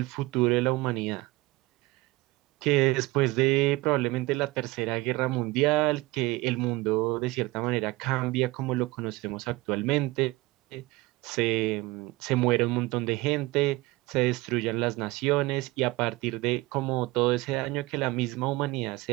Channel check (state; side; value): quieter; left; 20.8 dB